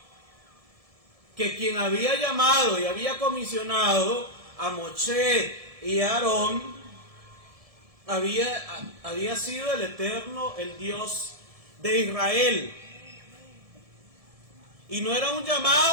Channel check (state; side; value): late; left; 1.7 ms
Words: que quien había llamado y había comisionado a Moshe y a Aarón había sido el Eterno, el Dios de Israel. Y no era un